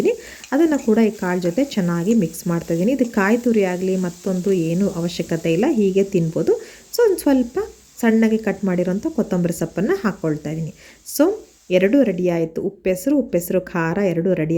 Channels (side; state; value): both; identical; correlation 1.00